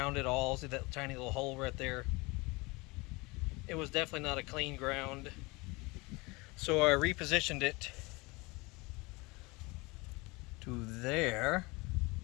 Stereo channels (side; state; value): right; quieter; 25.0 dB